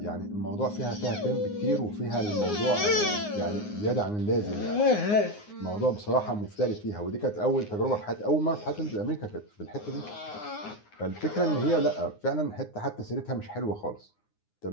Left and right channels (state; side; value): late; right; 9.6 ms